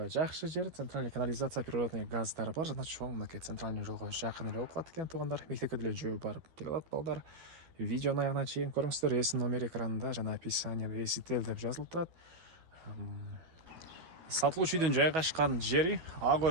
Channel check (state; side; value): late; left; 12 ms